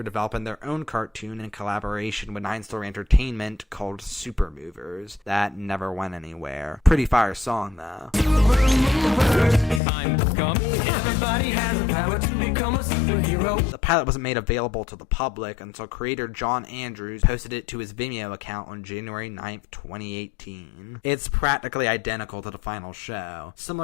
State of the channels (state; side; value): drops out; right; at 9.8 s